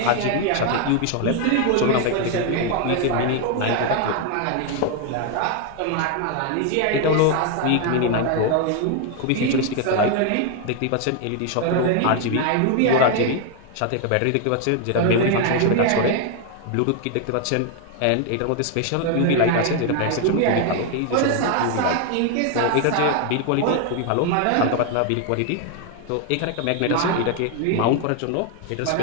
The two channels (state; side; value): different; both; correlation 0.01